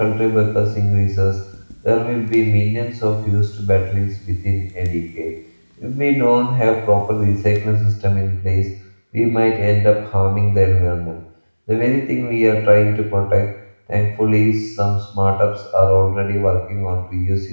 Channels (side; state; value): both; inverted; correlation -1.00